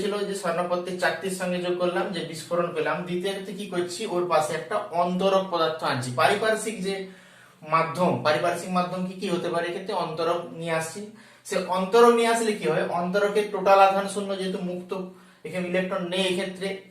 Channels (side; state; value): both; identical; correlation 1.00